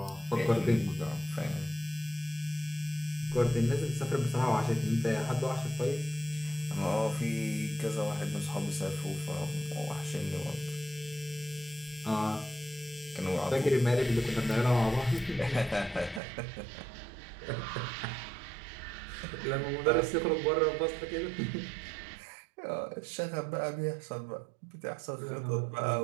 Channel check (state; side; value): drops out; left; at 16.2 s